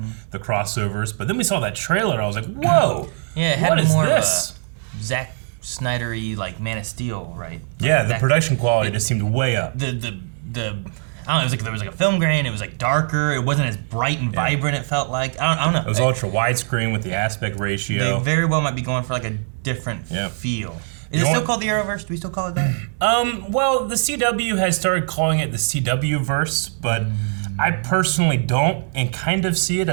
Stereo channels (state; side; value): silent; left; digital silence